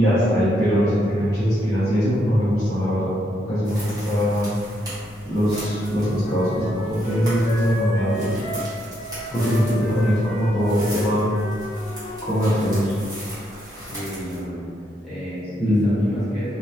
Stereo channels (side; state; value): both; normal; correlation 0.77